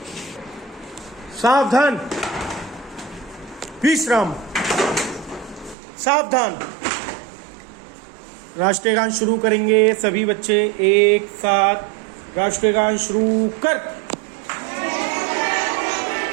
सावधान, विश्राम, सावधान। राष्ट्रीय गान शुरू करेंगे सभी बच्चे एक साथ। राष्ट्रीय गान शुरू कर।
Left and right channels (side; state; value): left; drops out; at 5.8 s